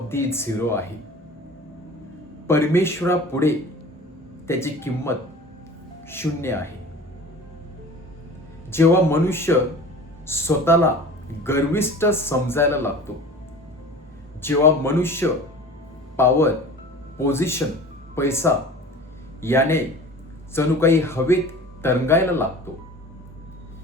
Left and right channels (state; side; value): normal; both; correlation 0.40